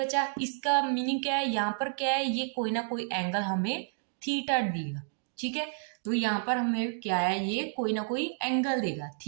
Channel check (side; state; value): left; silent; digital silence